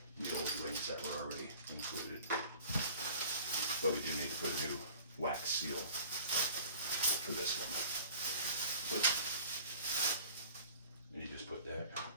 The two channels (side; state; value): both; inverted; correlation -0.47